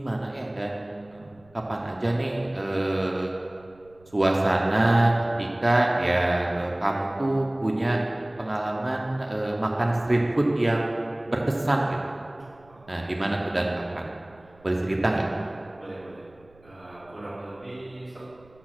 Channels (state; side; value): noise; right; rumble, 29 dB below the sound